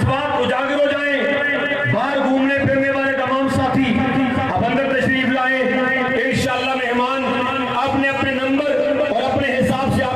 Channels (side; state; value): right; noise; rumble, 29 dB below the sound